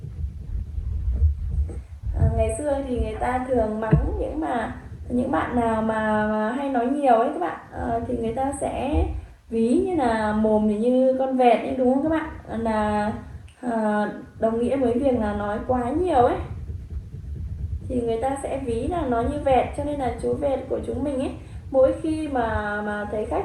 Ngày xưa thì người ta thường mắng những bạn nào mà hay nói nhiều ấy các bạn, thì người ta sẽ ví như là mồm thì như con vẹt ấy, đúng không các bạn? Là đồng nghĩa với việc là nói quá nhiều ấy, thì người ta sẽ ví là nó như vẹt. Cho nên là chú vẹt của chúng mình ấy, mỗi khi mà thấy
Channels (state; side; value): identical; both; correlation 1.00